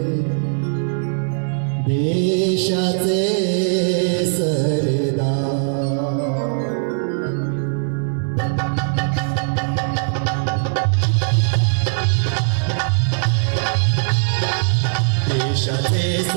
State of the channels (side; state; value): left; silent; digital silence